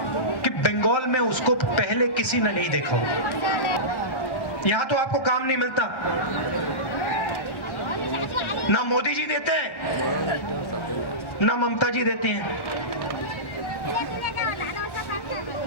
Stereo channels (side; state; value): right; late; 1.1 ms